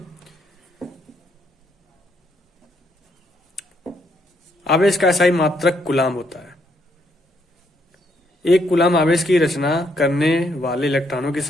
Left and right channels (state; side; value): normal; both; correlation 0.73